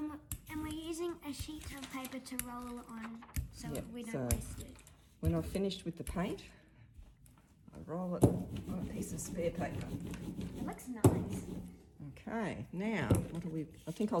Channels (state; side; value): identical; both; correlation 1.00